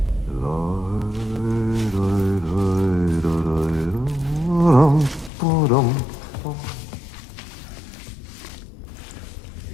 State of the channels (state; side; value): drops out; right; at 5.3 s